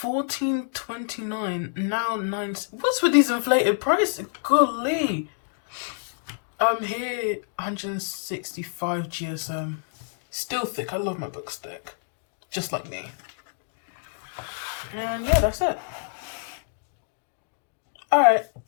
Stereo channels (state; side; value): silent; right; digital silence